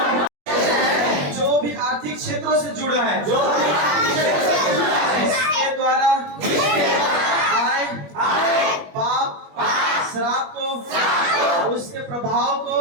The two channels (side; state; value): left; late; 21 ms